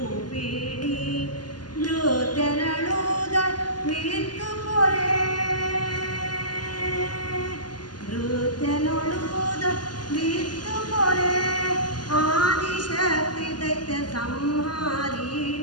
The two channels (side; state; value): right; late; 0.70 ms